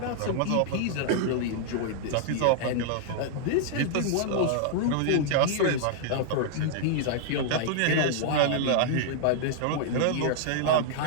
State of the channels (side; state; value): both; different; correlation -0.01